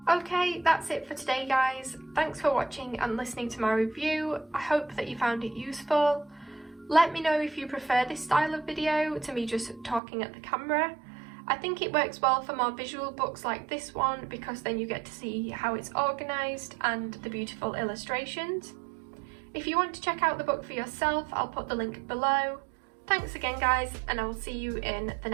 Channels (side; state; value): left; drops out; at 10.0 s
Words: Okay, that's it for today, guys. Thanks for watching and listening to my review. I hope that you found it useful. Let me know if you prefer this style of video to me just talking at the camera. I think it works well for more visual books like this one because then you get to see how it's organised and the beautiful illustrations. If you want to check out the book for yourself, I'll put the link below. Thanks again, guys, and I will see you in the